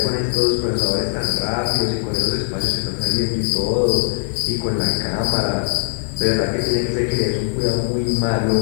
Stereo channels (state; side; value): silent; right; 63 dB below the other